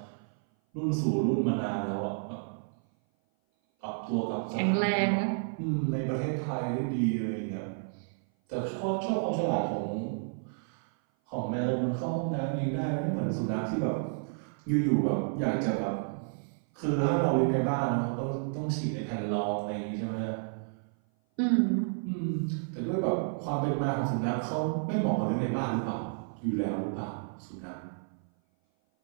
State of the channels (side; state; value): left; silent; 56 dB below the other